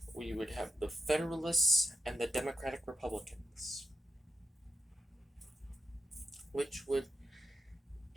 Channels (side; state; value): both; normal; correlation 0.84